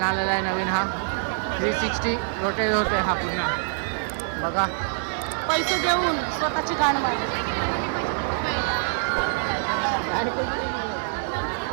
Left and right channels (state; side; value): silent; left; 62 dB below the other